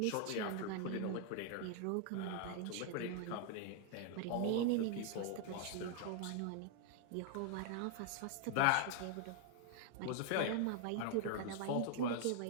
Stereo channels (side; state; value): both; different; correlation 0.00